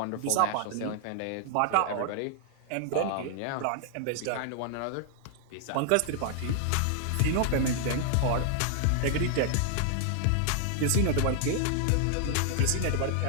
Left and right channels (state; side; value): different; both; correlation 0.00